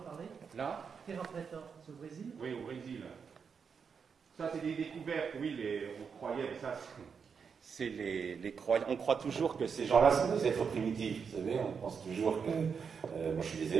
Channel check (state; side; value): quieter; left; 6.2 dB